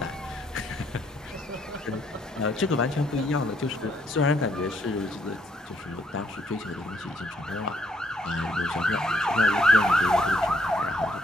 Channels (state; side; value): normal; both; correlation 0.70